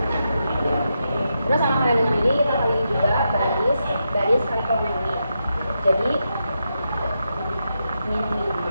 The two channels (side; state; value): both; inverted; correlation -0.85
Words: Terus sama halnya dengan ini kita kali juga baris kali kolom ini. Jadi min 5